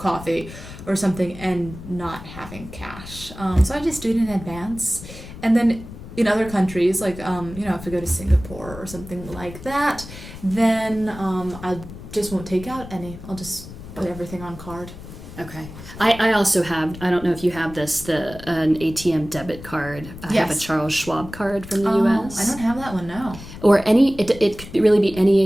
or something and not having cash. So I just do it in advance. And then in other countries, if I go to Singapore or something like that, then I just won't take out any. I'll just put everything on card. Okay. I also have, I don't know if you have this, an ATM debit card. I have a Charles Schwab card from the U.S. I don't have that one, no. Or it could really be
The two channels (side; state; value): left; noise; rumble, 14 dB below the sound